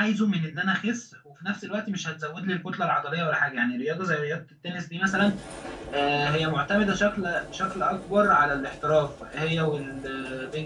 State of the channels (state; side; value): identical; both; correlation 1.00